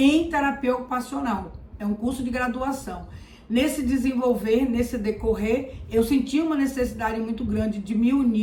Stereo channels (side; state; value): both; identical; correlation 1.00